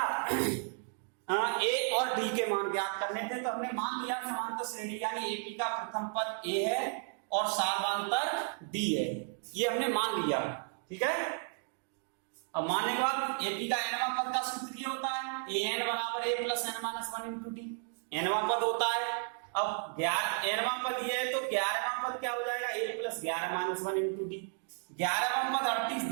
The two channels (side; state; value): left; silent; 55 dB below the other